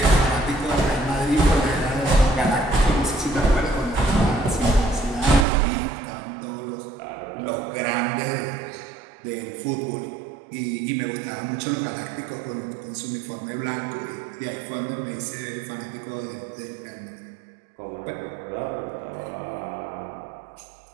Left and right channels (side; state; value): left; drops out; at 5.5 s